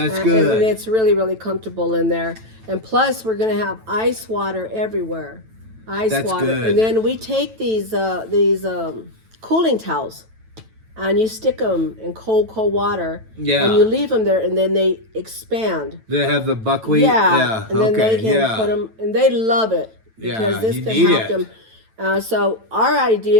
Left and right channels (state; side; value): late; left; 9.1 ms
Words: good. And it's really, really comfortable in there. And plus, we're going to have ice water everywhere. That's water. Good. And then we take these cooling towels and you stick them in cold water. Yeah. And you leave them there, and then they expand. They have the buckwheat. Yeah. And then they can put them, and they love it because this can help them. So our